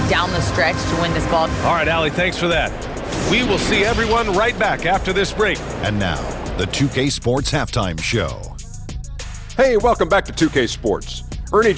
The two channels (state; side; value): identical; both; correlation 1.00